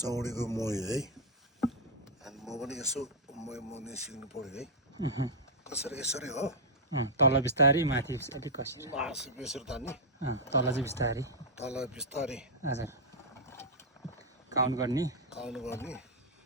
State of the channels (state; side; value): normal; both; correlation -0.06